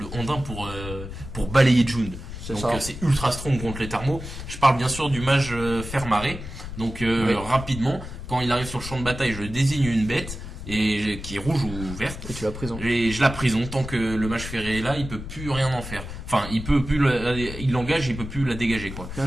Ondin pour balayer Jund. Donc c'est ultra strong contre les thermos. Je parle bien sûr du mage Fermaré. Donc rapidement, quand il arrive sur le champ de bataille, je désigne une bête et qui est rouge ou verte. Et tu la prison. Et je la prison tant que le mage ferré est là, il peut plus rien en faire. Enfin, il l'engage, il peut plus la dégager quoi. Bien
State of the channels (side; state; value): left; noise; rumble, 10 dB below the sound